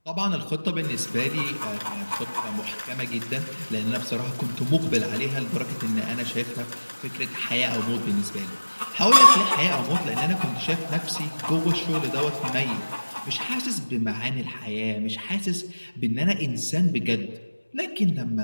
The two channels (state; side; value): inverted; both; correlation -1.00